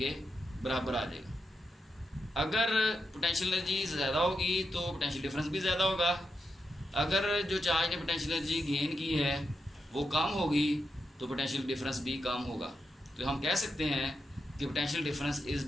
बराबर आ जाएगा। अगर पोटेंशियल एनर्जी ज़्यादा होगी तो पोटेंशियल डिफरेंस भी ज़्यादा होगा, अगर जो चार्ज ने पोटेंशियल एनर्जी गेन की है वो कम होगी तो पोटेंशियल डिफरेंस भी कम होगा। तो हम कह सकते हैं कि potential difference is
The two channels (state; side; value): normal; both; correlation 0.86